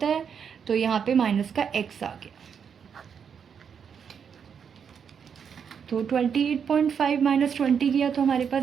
है, तो यहाँ पे माइनस का x आ गया। तो 28.5 माइनस 20 किया तो हमारे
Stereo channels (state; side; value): quieter; left; 7.2 dB